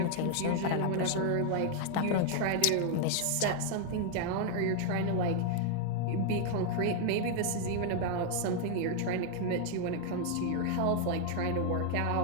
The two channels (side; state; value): both; different; correlation 0.00